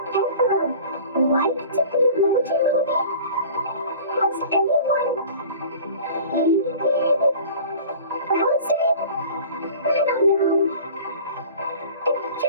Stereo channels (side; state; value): both; inverted; correlation -0.43